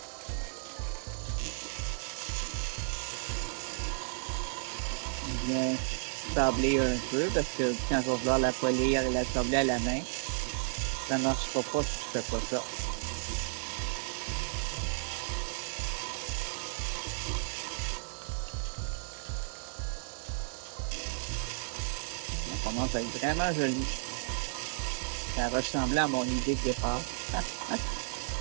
Bien sabler un peu parce que quand je vais vouloir la polir et la sabler à la main, ça ne marchera pas si je fais pas ça. Ça commence à être vraiment joli. Ça ressemblait à mon idée de départ.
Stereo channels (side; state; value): left; silent; 56 dB below the other